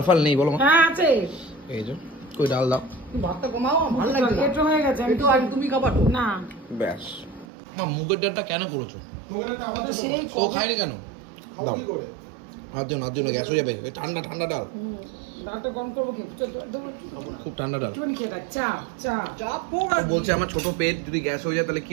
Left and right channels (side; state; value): left; drops out; at 7.5 s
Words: ফাল নেই বলো? হ্যাঁ আছে, এই যে কই ডাল দাও। তুমি ভাতটা কমাও, ভালো লাগছে না। পেট হয়ে গেছে, আমি তো আগে তুমি খাবার তো না। ব্যাস মা মুগের ডালটা কেন করেছো? তো সেই তো খাইনি কেন? দাও আর দিও না, দিও না, গ্যাস হয়ে যাবে। ওই ঠান্ডা ঠান্ডা ডাল, ডালটা গরম করবো কি? খুব ঠান্ডা ডাল। একটুখানি খেয়ে থাক, চা চা চাপ ও বলছে আমার ছোট পেট, যদি গ্যাস হয়ে যায় তাহলে